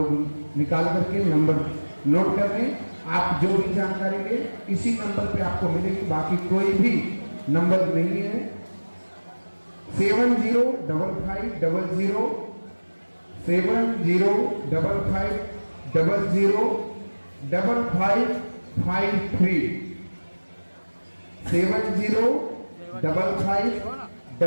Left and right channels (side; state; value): both; inverted; correlation -1.00